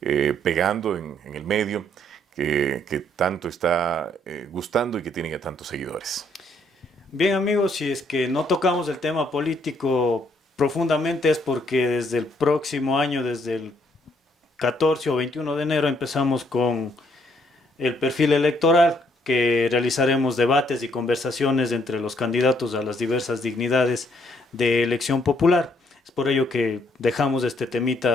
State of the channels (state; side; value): normal; both; correlation 0.69